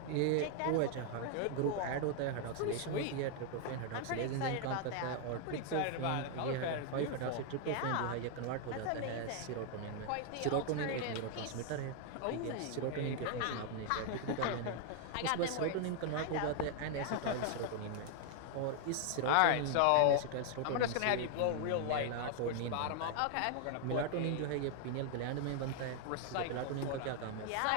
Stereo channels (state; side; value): different; both; correlation 0.00